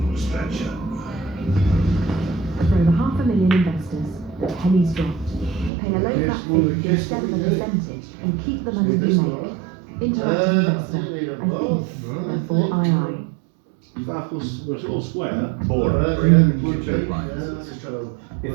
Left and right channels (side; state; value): left; drops out; at 5.7 s